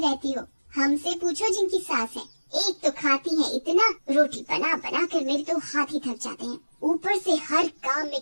हो। हमसे पूछो जिनकी सास है, एक तो खाती है इतना, रोटी बना बना कर मेरे तो हाथ ही थक जाते हैं, ऊपर से हर काम में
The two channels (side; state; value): both; inverted; correlation -1.00